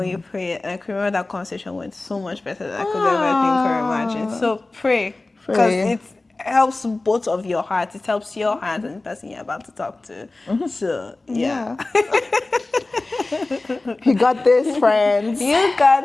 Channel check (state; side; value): quieter; right; 3.1 dB